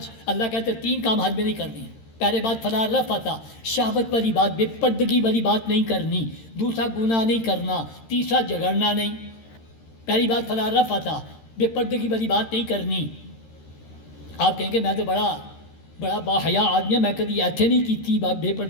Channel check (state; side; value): late; right; 13 ms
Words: اللہ کہتے 3 کام حج میں نہیں کرنی. پہلے بات فلا رفث، شہوت والی بات، بے پردگی والی بات نہیں کرنی. دوسرا گناہ نہیں کرنا. تیسرا جھگڑنا نہیں. پہلی بات فلا رفث، بے پردگی والی بات نہیں کرنی. آپ کہیں گے میں تو بڑا باحیا آدمی ہے، میں کبھی ایتھے نہیں کی تھی بے